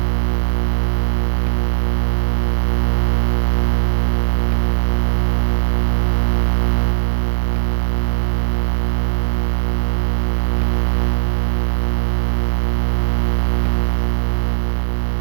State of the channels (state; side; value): silent; left; digital silence